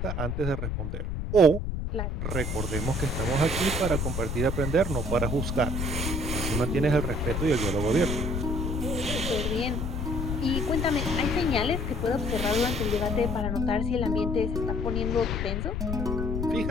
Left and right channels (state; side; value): noise; left; rumble, 2 dB below the sound